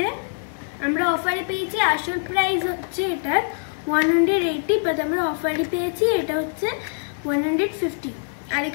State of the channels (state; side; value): silent; right; 63 dB below the other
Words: আমরা অফারে পেয়েছি, আসল প্রাইস হচ্ছে এটার 180, বাট আমরা অফারে পেয়েছি এটা হচ্ছে 150। আর